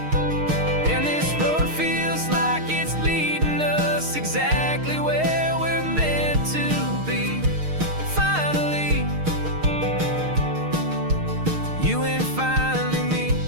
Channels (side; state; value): left; late; 6.5 ms